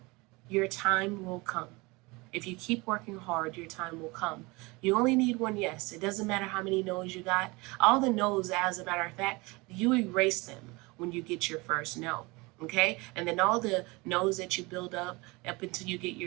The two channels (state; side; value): quieter; left; 24.9 dB